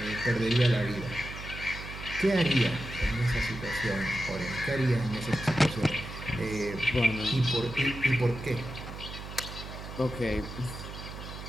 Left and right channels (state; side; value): noise; right; hum, 10 dB below the sound